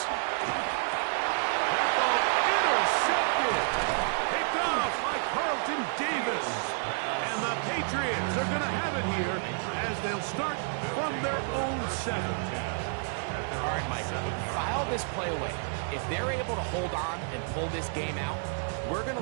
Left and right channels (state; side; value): silent; left; digital silence